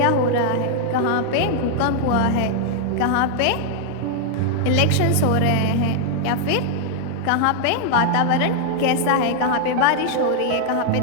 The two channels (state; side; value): different; both; correlation 0.00